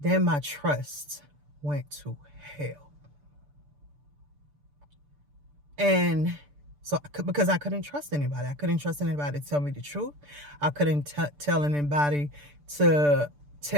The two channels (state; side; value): late; left; 6.8 ms